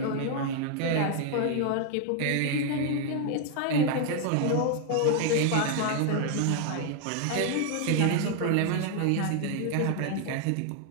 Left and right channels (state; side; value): different; both; correlation 0.00